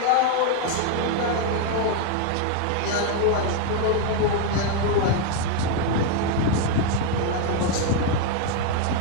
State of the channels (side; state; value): both; different; correlation 0.01